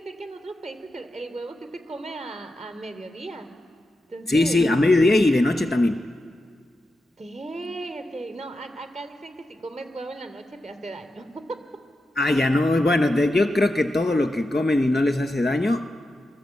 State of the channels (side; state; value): both; normal; correlation 0.89